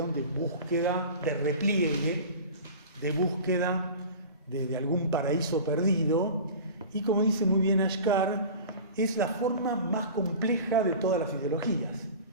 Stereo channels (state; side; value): inverted; both; correlation -0.37